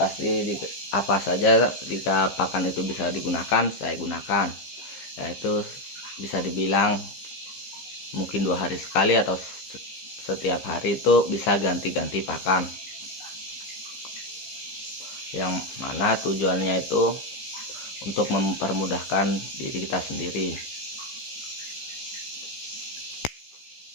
apa saja jika pakan itu bisa digunakan saya gunakan, yaitu bisa dibilang mungkin 2 hari sekali atau setiap hari itu bisa ganti-ganti pakan, yang mana tujuannya itu untuk mempermudahkan diri kita sendiri.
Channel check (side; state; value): right; late; 15 ms